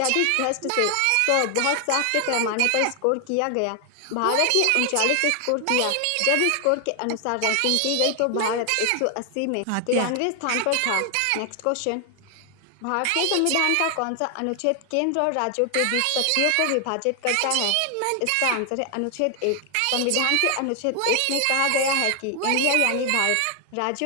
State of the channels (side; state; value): both; different; correlation 0.00